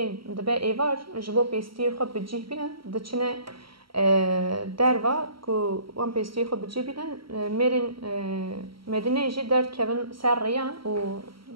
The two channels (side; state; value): left; late; 0.74 ms